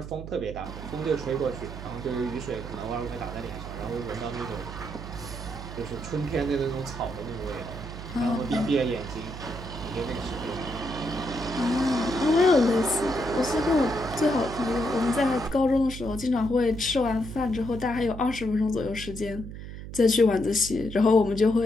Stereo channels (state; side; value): noise; right; hum, 10 dB below the sound